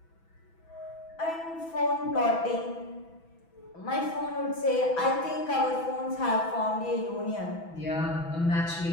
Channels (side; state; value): right; late; 6.1 ms